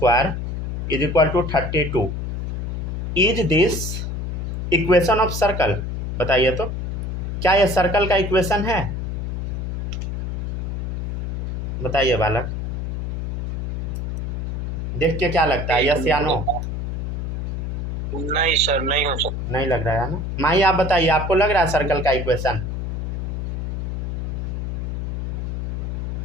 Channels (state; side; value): noise; left; hum, 3 dB below the sound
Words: is equal to 32। Is this equation of circle? बताइए तो, क्या यह सर्कल का इक्वेशन है? बताइए बालक, देख के क्या लगता है, यस या नो? नहीं सर नहीं हो सकता। नहीं लग रहा है ना। माही आप बताइए, आपको लग रहा है सर्कल का इक्वेशन?